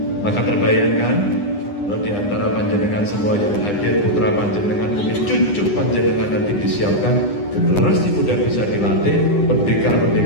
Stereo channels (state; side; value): late; right; 9.8 ms